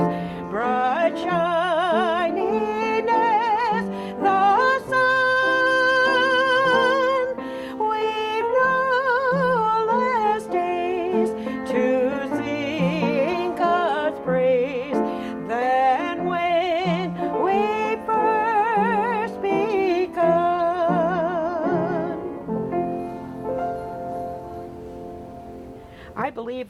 bright shining as the sun, we've no less days to sing God's praise than when we first begun. I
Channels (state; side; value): identical; both; correlation 1.00